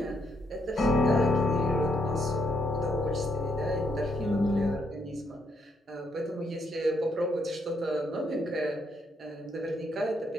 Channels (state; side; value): normal; both; correlation 0.75